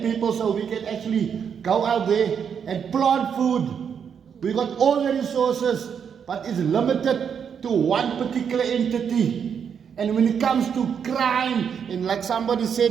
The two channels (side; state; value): left; quieter; 7.4 dB